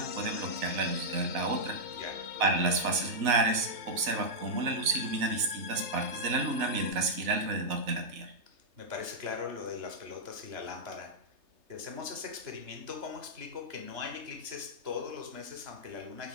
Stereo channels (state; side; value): late; left; 3.3 ms